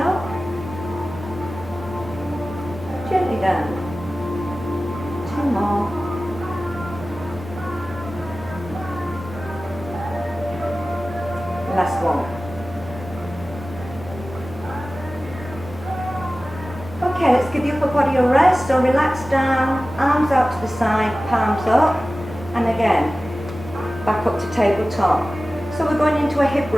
gently down. 2 more. Last one. Okay, let's give the upper body a rest. So relax down, arms out to the side, palms up, and again, back up to tabletop. So we're going into a hip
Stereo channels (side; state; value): both; normal; correlation 0.96